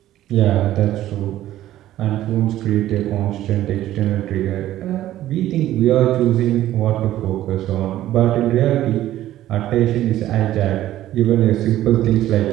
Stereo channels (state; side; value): quieter; left; 13.7 dB